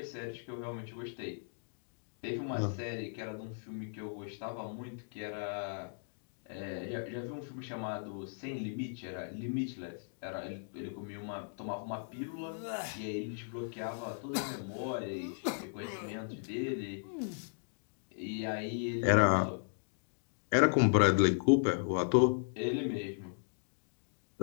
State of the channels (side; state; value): right; silent; digital silence